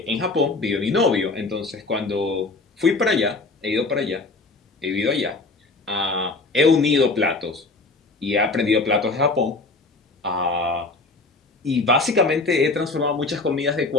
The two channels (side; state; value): right; quieter; 3.5 dB